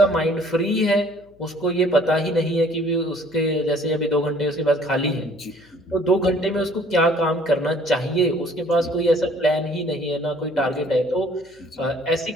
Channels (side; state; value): left; noise; hum, 30 dB below the sound